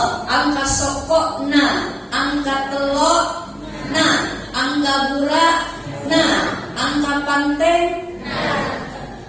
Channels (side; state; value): both; identical; correlation 1.00